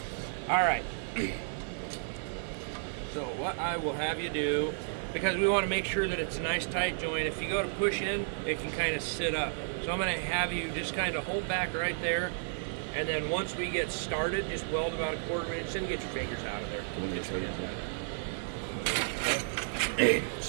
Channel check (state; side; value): silent; left; 56 dB below the other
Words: All right. So what I will have you do because we want to make sure that it's a nice tight joint. If you go to push in, it can kind of sit up. So I'm going to have you just kind of hold back right there, and then once we get started, just weld about a 1/4 inch and get your fingers out of there.